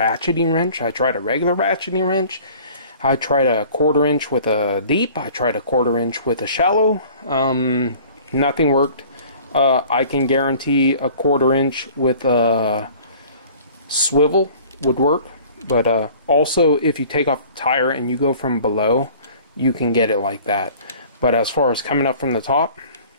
wrench, I tried a regular ratcheting wrench, I tried a 1/4 inch with a deep, I tried a 1/4 inch with a shallow. Nothing worked. I can guarantee a 1/4 inch with a swivel would work, but also if you take off the tire and you go from below, you can get it like that. But as far as coming up from the top,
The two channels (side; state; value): both; inverted; correlation -0.48